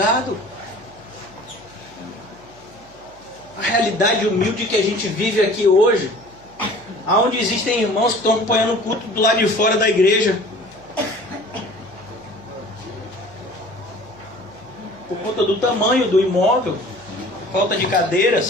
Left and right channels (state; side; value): noise; right; hum, 27 dB below the sound